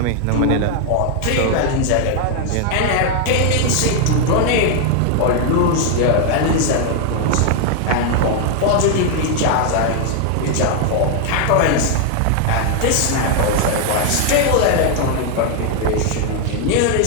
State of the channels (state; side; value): different; both; correlation 0.00